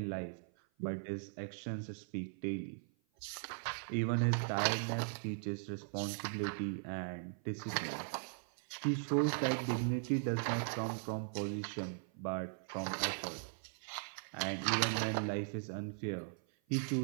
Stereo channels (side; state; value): left; silent; 52 dB below the other